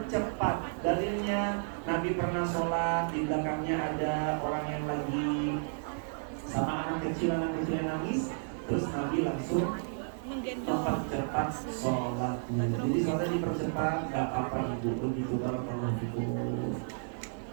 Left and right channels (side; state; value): left; silent; 56 dB below the other